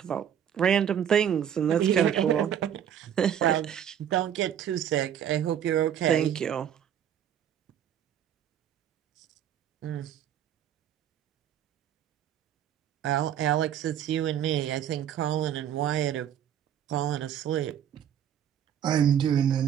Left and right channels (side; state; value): left; quieter; 9.6 dB